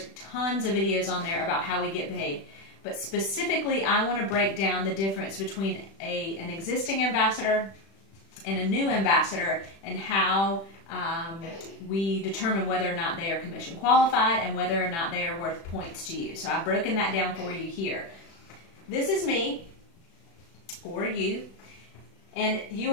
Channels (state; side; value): late; right; 36 ms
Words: tons of videos on there about how we get paid. But specifically, I want to break down the difference between an existing ambassador and a new ambassador and how we determine whether or not they are commission qualified and whether or not they are worth points to you. So I've broken that down for you here. This is me, or you, and you